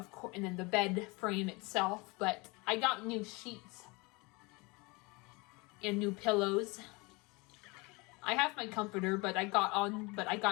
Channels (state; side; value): quieter; right; 26.3 dB